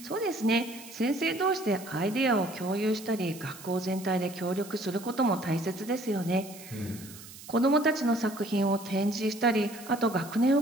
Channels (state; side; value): noise; right; hiss, 17 dB below the sound